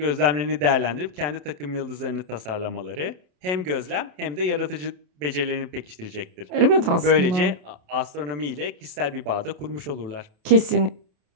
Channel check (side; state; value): left; late; 27 ms